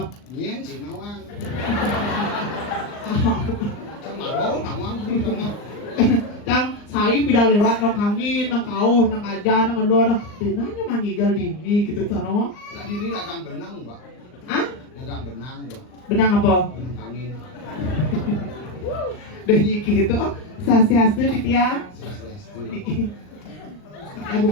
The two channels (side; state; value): right; late; 39 ms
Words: nyen si nawang sama do nawang sama Cang saya pindah lewat nang angin, nang kau, nang aja, nang elo, nang dinanya mangigal dini gitu sana. nah di ini dagang benang mbak Hah? dagang benang mbak Benang apa? benang angin Lagi gitu, sasiasnya di tiang. Swastiastu. Ya